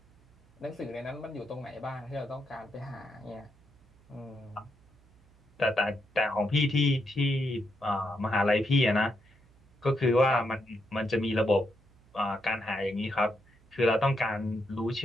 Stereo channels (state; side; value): noise; right; hum, 29 dB below the sound